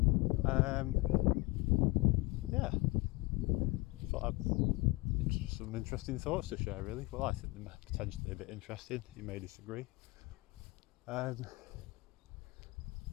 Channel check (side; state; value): right; quieter; 23.1 dB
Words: Yeah, thought I'd just some interesting thoughts to share. Really, well, I think they're potentially a bit interesting. You may disagree. It